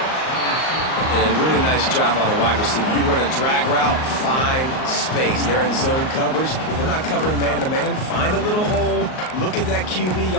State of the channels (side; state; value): right; late; 38 ms